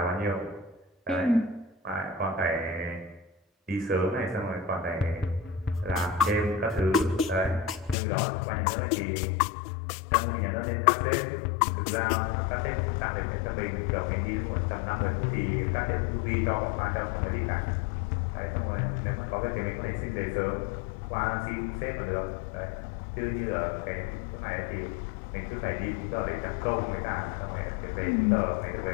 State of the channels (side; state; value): right; drops out; at 8.0 s